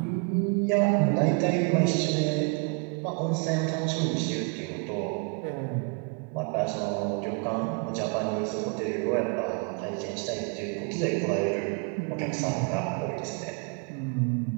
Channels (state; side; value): quieter; left; 34.4 dB